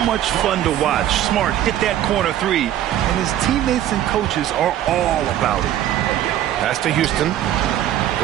much fun to watch. Smart hit that corner 3, and his teammates and coaches are all about it. Pass to Houston.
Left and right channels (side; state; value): left; quieter; 12.0 dB